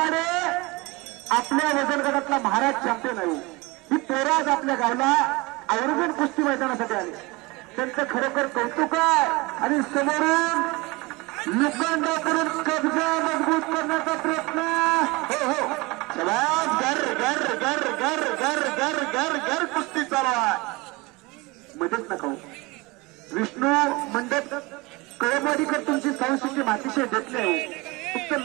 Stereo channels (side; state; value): left; quieter; 23.9 dB